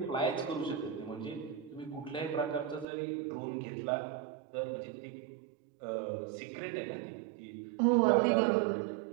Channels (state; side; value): drops out; left; at 2.9 s